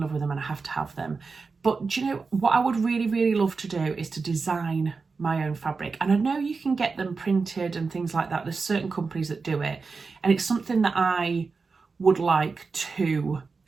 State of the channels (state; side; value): quieter; left; 4.5 dB